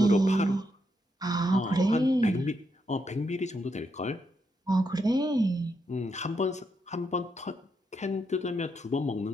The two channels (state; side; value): normal; both; correlation 0.80